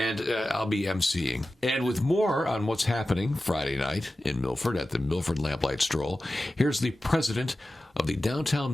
I'll be emceeing. And with more on what's happening Friday night in Milford at the Milford Lamplight Stroll, here's the president of the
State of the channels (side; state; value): both; normal; correlation 0.94